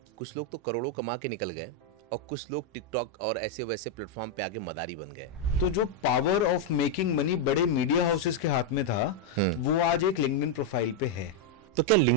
कुछ लोग तो करोड़ों कमा के निकल गए और कुछ लोग टिकटॉक और ऐसे वैसे प्लेटफॉर्म पे आके मदारी बन गए। तो जो पावर ऑफ मेकिंग मनी बड़े मीडिया हाउसेस के हाथ में था, वो आज एक लिंक्डइन प्रोफाइल पे है। तो क्या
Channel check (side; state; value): both; normal; correlation 0.00